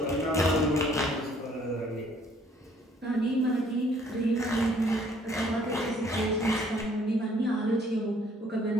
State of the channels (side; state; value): both; normal; correlation 0.61